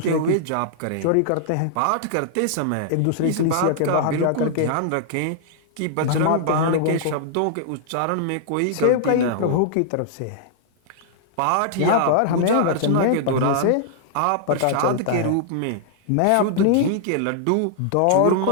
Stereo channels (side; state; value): both; different; correlation -0.01